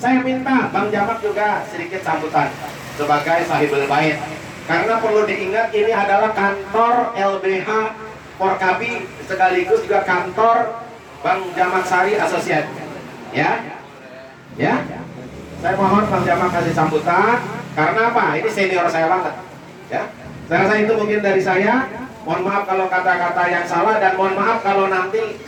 saya minta Bang Jamak juga sedikit sambutan sebagai sahibul bait. Karena perlu diingat ini adalah kantor LBH Porkapi sekaligus juga kantor Bang Jamak Sari Associate. Ya, ya. Saya mohon Bang Jamak kasih sambutan. Karena apa? Ini senior saya banget. Ya, saya rasa itu mungkin dari saya. Mohon maaf kalau kata-kata yang salah, dan mohon maaf kalau nanti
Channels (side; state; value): both; identical; correlation 1.00